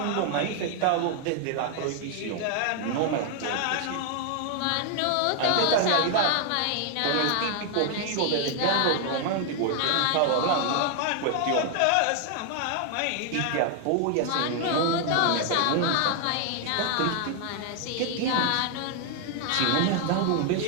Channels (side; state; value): both; different; correlation 0.00